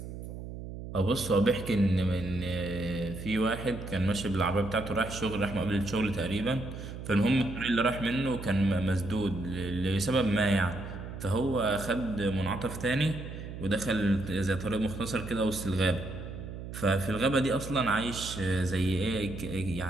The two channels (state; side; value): noise; right; hum, 9 dB below the sound